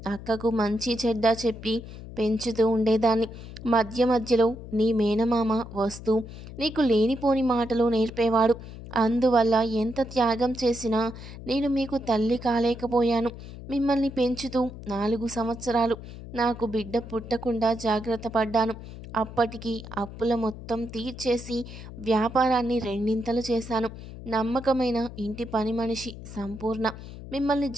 అక్కకు మంచి చెడ్డ చెప్పి పెంచుతూ ఉండేదాన్ని. మధ్య మధ్యలో నీ మేనమామ వస్తూ నీకు లేనిపోని మాటలు నేర్పేవాడు. అందువల్ల ఎంత త్యాగం చేసినా నేను మీకు తల్లి కాలేకపోయాను. మిమ్మల్ని పెంచుతూ 4 సంవత్సరాలు నాకు బిడ్డ పుట్టకుండా జాగ్రత్త పడ్డాను. అప్పటికి అప్పుల మొత్తం తీర్చేసి వ్యాపారాన్ని రెండింతలు చేశాను. నమ్మకమైన ఇంటి పని మనిషి సంపూర్ణ మిమ్మల్ని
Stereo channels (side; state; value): left; noise; hum, 13 dB below the sound